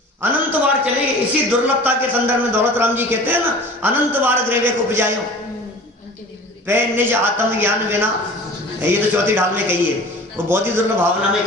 अनंत बार चलेगी। इसी दुर्लभता के संदर्भ में दौलत राम जी कहते हैं ना, अनंत बार ग्रेवे को उपजायो पे निज आत्म ज्ञान बिना। ये तो चौथी ढाल में कही है, वो बहुत ही दुर्लभ भावना में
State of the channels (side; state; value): both; normal; correlation 0.42